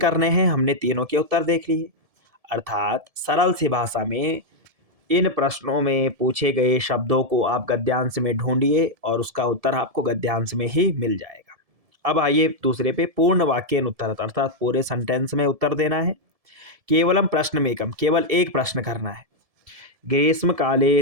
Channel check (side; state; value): left; late; 1.7 ms